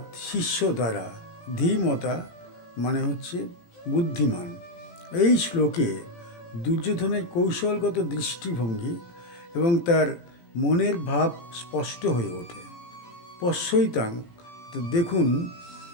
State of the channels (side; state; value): right; late; 17 ms